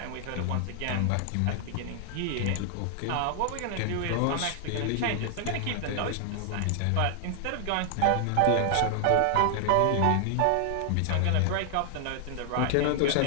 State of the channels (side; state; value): both; different; correlation 0.00